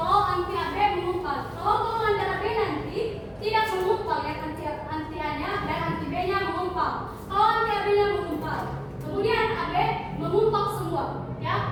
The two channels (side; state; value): both; identical; correlation 1.00